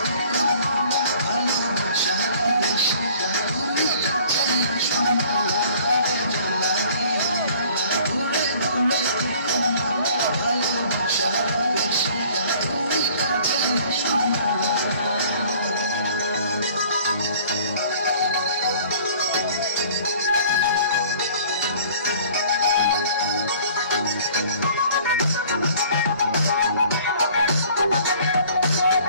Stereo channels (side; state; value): both; inverted; correlation -0.53